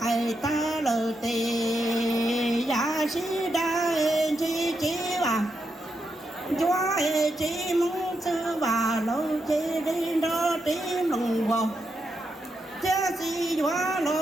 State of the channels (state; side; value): normal; both; correlation 0.84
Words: cày ta lờ tề giá sĩ đa chi chi và chúa hê chi mong sư và lâu chi đi đó tím lòng vào cha si quá